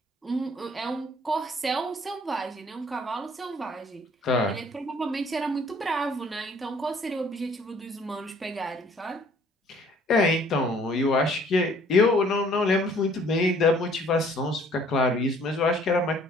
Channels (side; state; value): both; normal; correlation 0.58